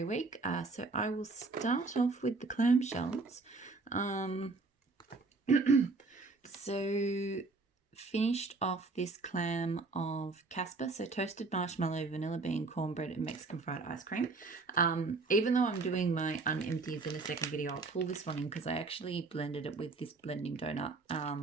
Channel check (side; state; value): left; quieter; 3.8 dB